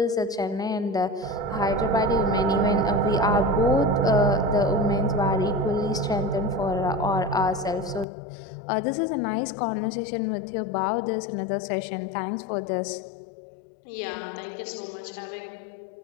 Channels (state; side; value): drops out; right; at 8.1 s